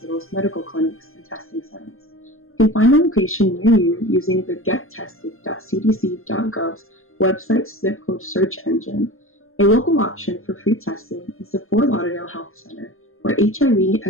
medical clinics, and testing centers. You can find a location near you using the gettested.cdc.gov's website zip code search engine. A local option for free testing is the Fort Lauderdale Health Center, where HIV,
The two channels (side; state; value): right; late; 0.61 ms